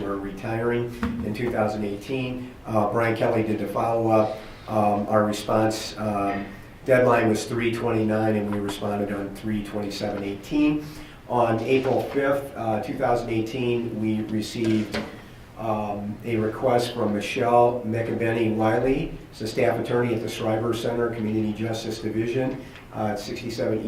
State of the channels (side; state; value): both; identical; correlation 1.00